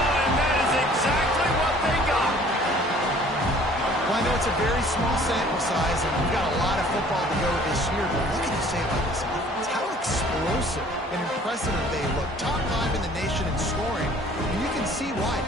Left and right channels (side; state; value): both; normal; correlation 0.53